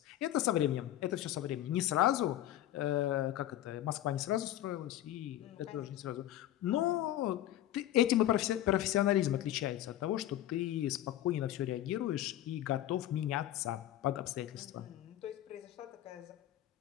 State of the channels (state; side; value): quieter; right; 13.3 dB